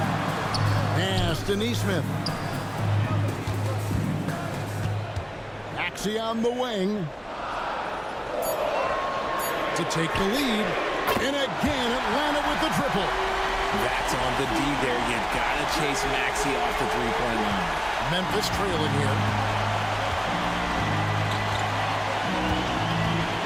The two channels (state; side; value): identical; both; correlation 1.00